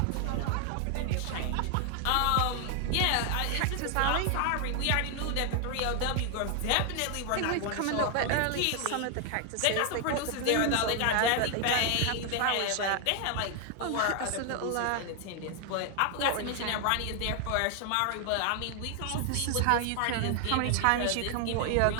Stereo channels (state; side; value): different; both; correlation 0.00